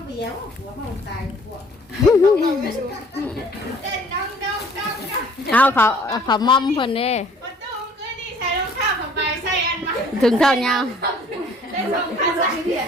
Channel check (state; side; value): normal; both; correlation 0.55